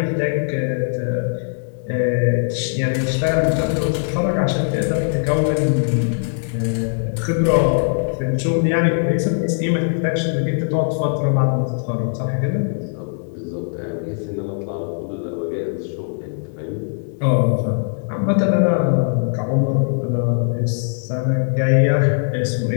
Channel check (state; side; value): silent; right; digital silence